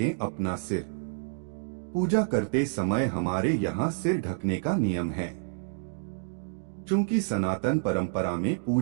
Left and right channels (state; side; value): silent; left; digital silence